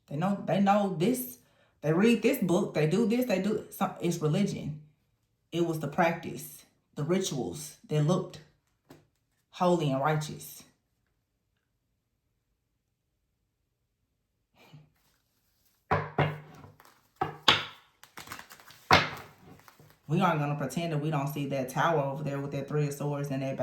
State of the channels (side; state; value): both; identical; correlation 1.00